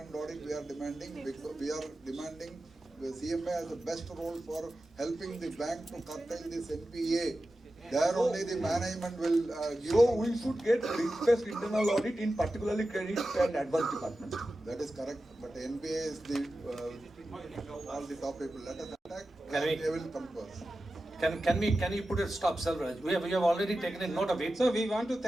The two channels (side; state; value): both; normal; correlation 0.93